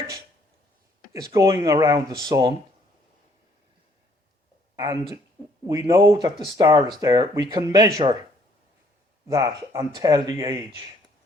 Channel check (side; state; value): both; normal; correlation 0.65